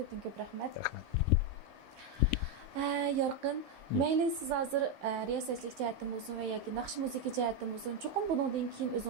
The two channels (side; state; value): left; late; 10 ms